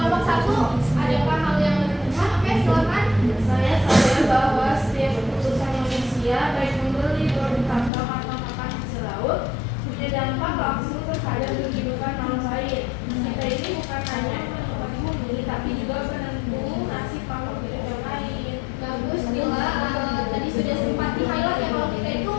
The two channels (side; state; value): right; drops out; at 7.9 s